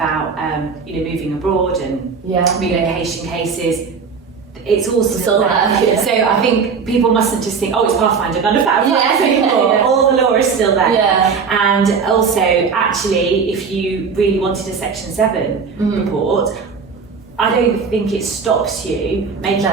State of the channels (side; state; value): left; quieter; 5.6 dB